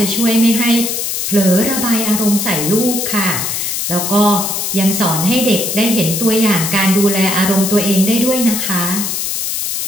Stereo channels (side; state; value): left; noise; hiss, 2 dB below the sound